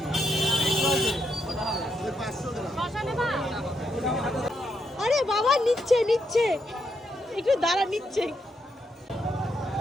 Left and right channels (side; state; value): both; normal; correlation 0.79